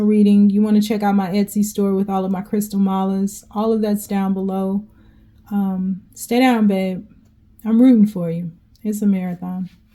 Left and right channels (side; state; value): both; identical; correlation 1.00